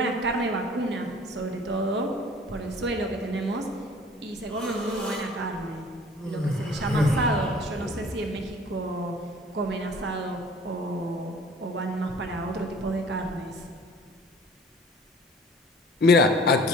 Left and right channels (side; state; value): both; normal; correlation 0.49